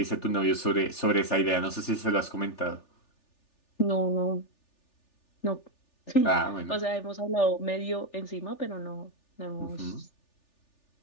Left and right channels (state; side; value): late; right; 3.4 ms